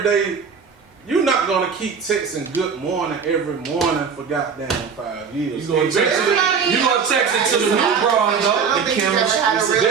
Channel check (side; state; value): left; quieter; 6.1 dB